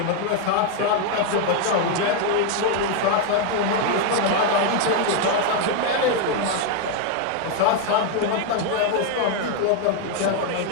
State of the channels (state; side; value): different; both; correlation 0.01